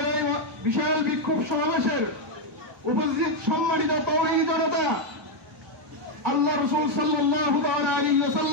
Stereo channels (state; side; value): normal; both; correlation 0.02